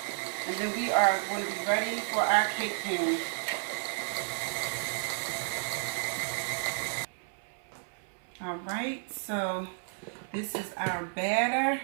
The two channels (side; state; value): left; silent; 56 dB below the other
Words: And then we are going to be ready for our cake pan. Alright, so this is our batter.